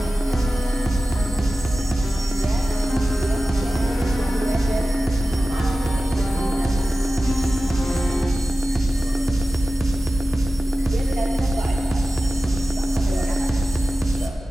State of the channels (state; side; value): normal; both; correlation 0.95